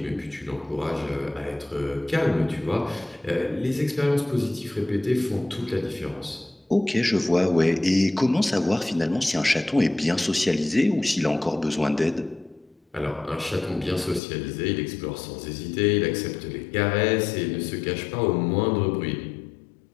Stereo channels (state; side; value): drops out; right; at 14.2 s